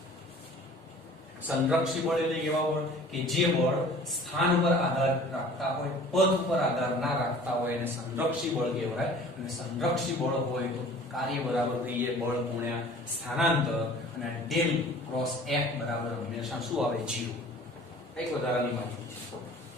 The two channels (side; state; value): both; normal; correlation 0.47